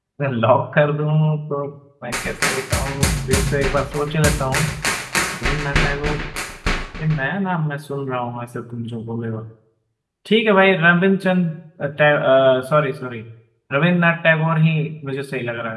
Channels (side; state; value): both; identical; correlation 1.00